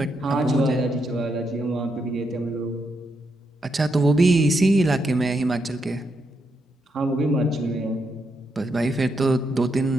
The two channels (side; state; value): both; normal; correlation 0.81